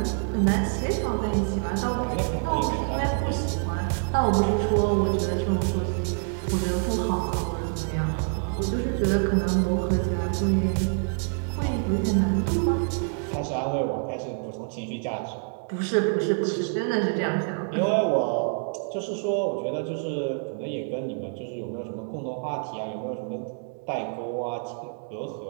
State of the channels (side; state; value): left; silent; 60 dB below the other